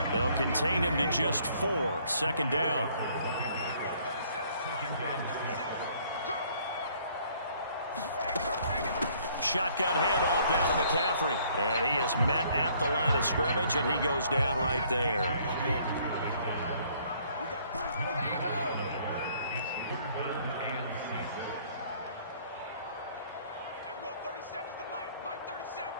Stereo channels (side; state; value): both; inverted; correlation -0.61